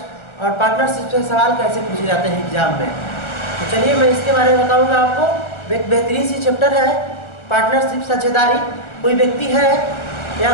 और पार्टनरशिप से सवाल कैसे पूछे जाते हैं एग्जाम में। तो चलिए मैं इसके बारे में बताऊंगा आपको। एक बेहतरीन सी चैप्टर है पार्टनरशिप साझेदारी। कोई व्यक्ति है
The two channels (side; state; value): right; late; 1.4 ms